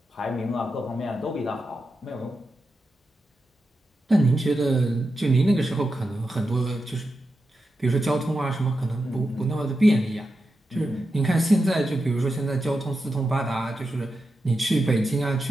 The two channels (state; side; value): normal; both; correlation 0.89